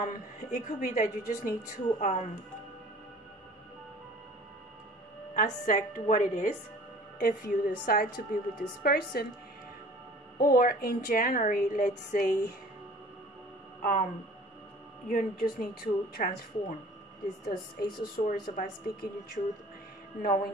it could be that you just need to accept what it is if you decide to be with this person. Or in January, let's say, you just need to transform. This Ace of Swords about speaking your truth,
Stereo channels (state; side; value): normal; both; correlation 0.47